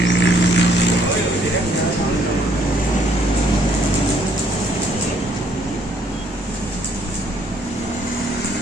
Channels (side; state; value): both; normal; correlation 0.66